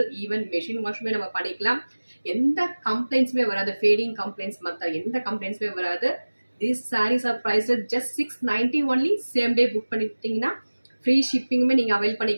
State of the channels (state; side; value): inverted; both; correlation -1.00